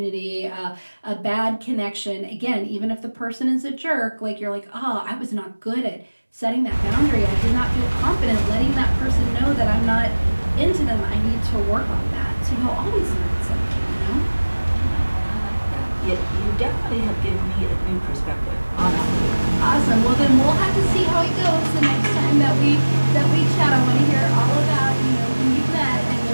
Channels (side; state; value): both; inverted; correlation -1.00